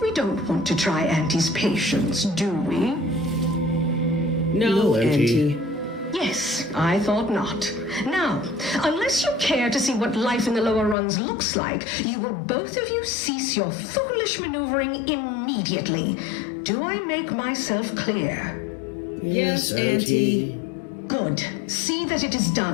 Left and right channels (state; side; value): drops out; right; at 11.0 s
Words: We don't want to try Auntie's patience, do we? No, Auntie. Yes, I thought not. Now, unless you care to see what life in the lower rungs looks like, you will both of you cease your foolish maneuvering immediately. Do I make myself clear? Yes, Auntie. Good. See that it is